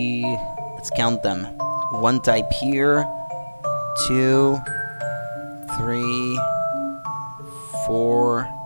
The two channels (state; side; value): inverted; both; correlation -1.00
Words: let's count them. 1 type here, 2, 3, 4,